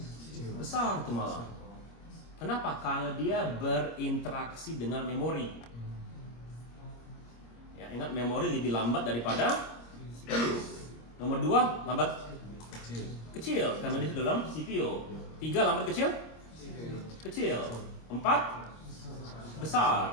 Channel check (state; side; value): late; right; 26 ms